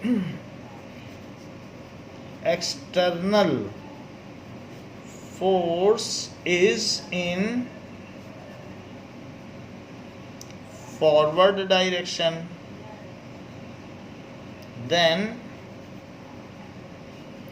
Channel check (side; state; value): both; identical; correlation 1.00